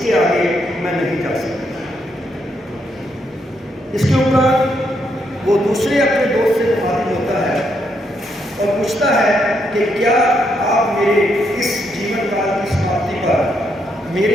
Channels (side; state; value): both; normal; correlation 0.77